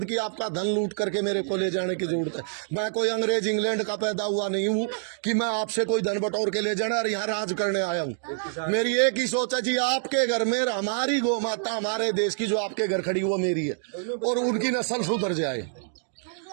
कि आपका धन लूट करके मेरे को ले जाने की जरूरत है। मैं कोई अंग्रेज इंग्लैंड का पैदा हुआ नहीं हूँ कि मैं आपसे कोई धन बटोर के ले जाना और यहाँ राज करने आया हूँ। मेरी एक ही सोच है जी, आपके घर में हमारी गौ माता, हमारे देश की जो आपके घर खड़ी वो मेरी है, और उनकी नस्ल सुधर जाए,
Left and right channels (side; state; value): left; silent; digital silence